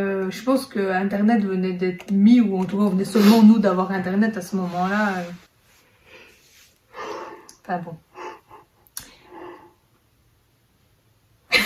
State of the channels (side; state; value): both; identical; correlation 1.00